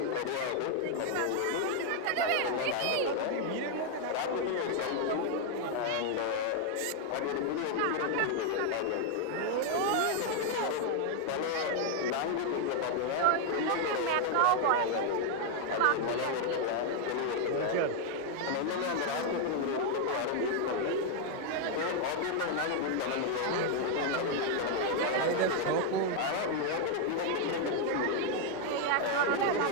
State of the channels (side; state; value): both; different; correlation 0.00